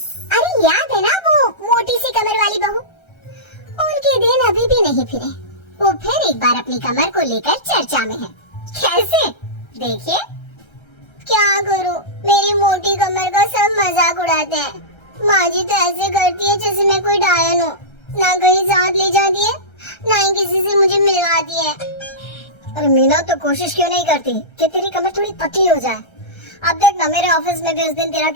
अरे याद है ना वो मोटी सी कमर वाली बहू? उनके दिन अभी भी नहीं फिरे। वो फिर एक बार अपनी कमर को लेकर चर्चा में है। कैसे? देखिए। क्या करूं, मेरी मोटी कमर का सब मजाक उड़ाते हैं। माँ जी तो ऐसे करती है जैसे मैं कोई डायन हूँ। ना कहीं साथ ले जाती है, ना ही किसी से मुझे मिलवाती है। अरे मीना तो कोशिश क्यों नहीं करती कि तेरी कमर थोड़ी पतली हो जाए? अब देख ना, मेरे ऑफिस में भी उस दिन तेरा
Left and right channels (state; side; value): late; right; 1.3 ms